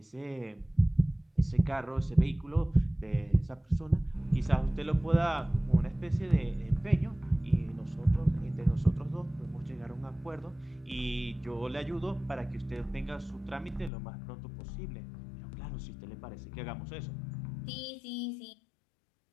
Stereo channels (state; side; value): drops out; right; at 13.9 s